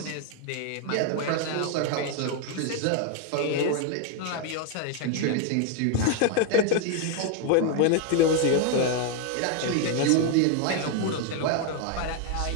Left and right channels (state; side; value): different; both; correlation 0.01